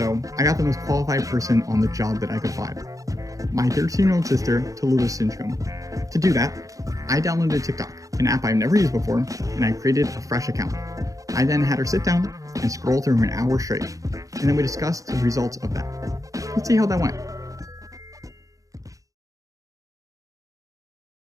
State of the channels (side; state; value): left; late; 0.16 ms